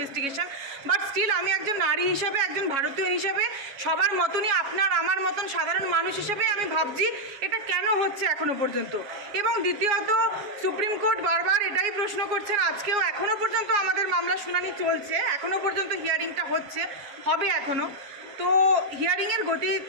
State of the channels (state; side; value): late; left; 7.2 ms